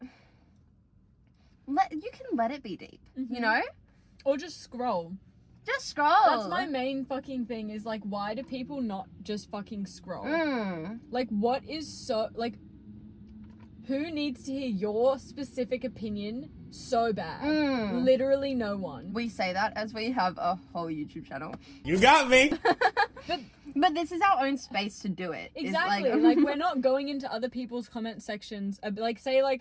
you can let it be deep, you know? Or just scroll. Just scroll. That's my main fucking thing is like, why do people not just fucking scroll? Like, what is so, like, who needs to hear your specific opinion so bad? Literally no one. We say that as we have a whole YouTube channel. You got me. But this is our own space to do it. It's Exactly. Like, we're not going into other people's comment sections. Like, say,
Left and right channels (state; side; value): identical; both; correlation 1.00